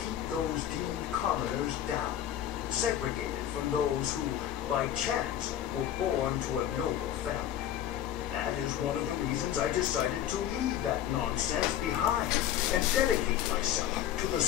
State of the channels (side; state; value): right; quieter; 11.0 dB